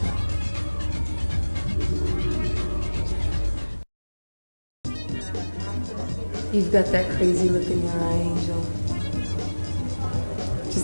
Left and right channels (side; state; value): both; inverted; correlation -1.00